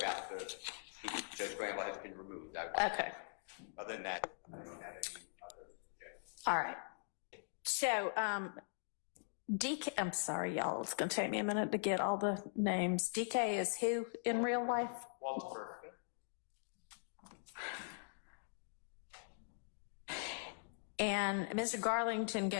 Judge Glanville has been removed. Okay. Other than that, I don't have any other objections. All right. So, DK, I'm sorry, y'all. It's going to take me a minute to get all the names. DK is who in real life? Walter. And Mr. Garlington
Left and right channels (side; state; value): right; silent; digital silence